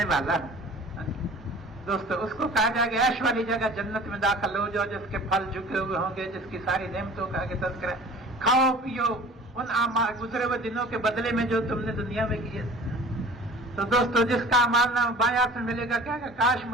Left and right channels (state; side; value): normal; both; correlation 0.44